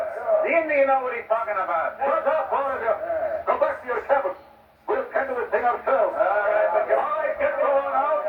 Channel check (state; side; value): identical; both; correlation 1.00